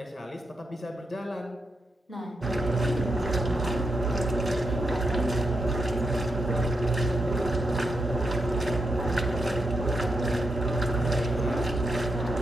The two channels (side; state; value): both; normal; correlation 0.83